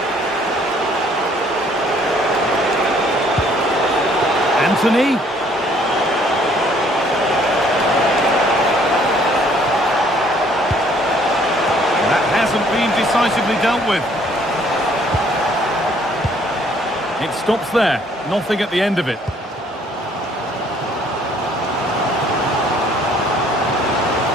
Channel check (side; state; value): both; normal; correlation 0.61